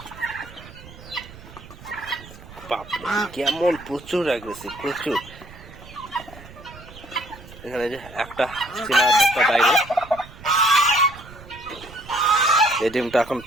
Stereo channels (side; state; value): right; noise; rumble, 18 dB below the sound